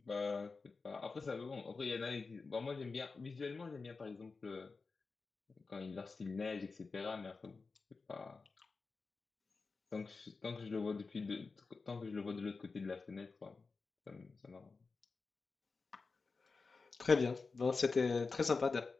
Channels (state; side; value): quieter; right; 4.3 dB